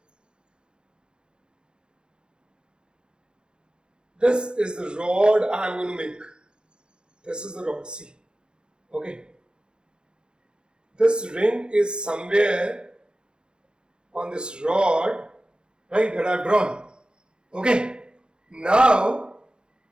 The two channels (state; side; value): late; left; 0.049 ms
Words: the rod I am going to make. This is the rod, see. Okay. This ring is somewhere on this rod, right, that I have drawn. Okay. Now,